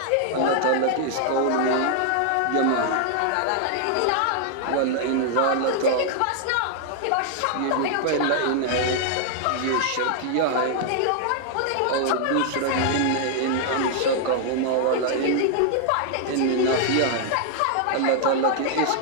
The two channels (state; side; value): different; both; correlation 0.00